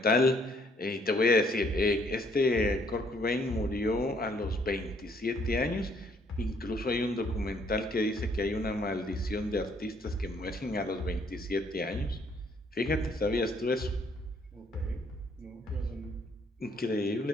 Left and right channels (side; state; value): both; normal; correlation 0.66